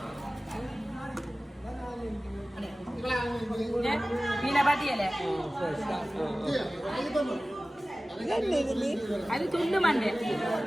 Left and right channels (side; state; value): both; normal; correlation 0.97